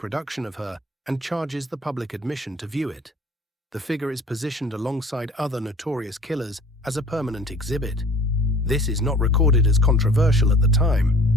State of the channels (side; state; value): both; normal; correlation 0.48